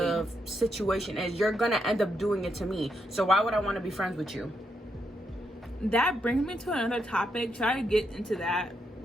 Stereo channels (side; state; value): both; normal; correlation 0.80